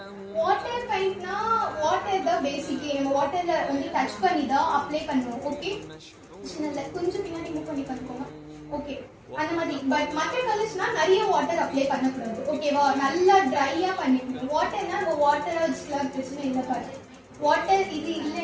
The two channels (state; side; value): identical; both; correlation 1.00